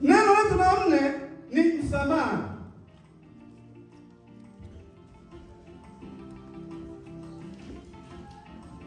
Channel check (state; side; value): identical; both; correlation 1.00